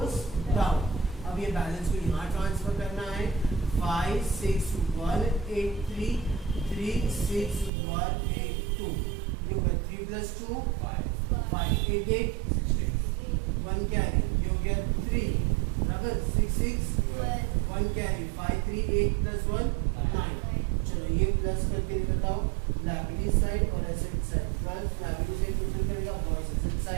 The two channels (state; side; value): drops out; left; at 7.7 s